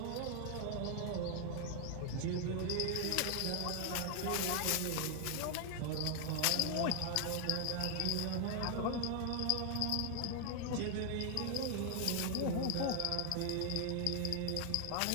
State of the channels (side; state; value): both; different; correlation 0.00